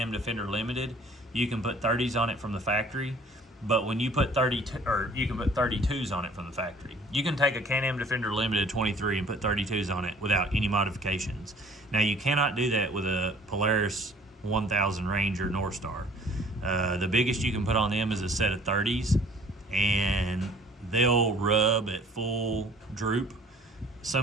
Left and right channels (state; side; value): normal; both; correlation 0.53